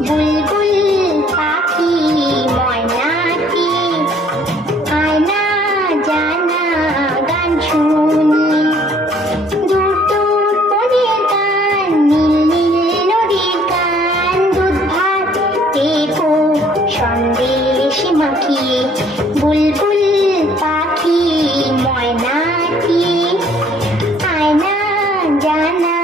বুলবুল পাখি ময়নাটি আয়না জানা গান শুনি। দূর দূর বনের গান, নীল নীল নদীর গান, দুধ ভাত দেখো সন্দেশ মাখিয়ে। বুলবুল পাখি ময়নাটি আয়না জানা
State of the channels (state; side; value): normal; both; correlation 0.60